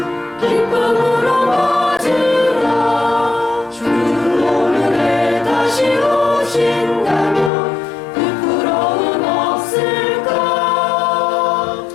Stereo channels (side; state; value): right; drops out; at 7.5 s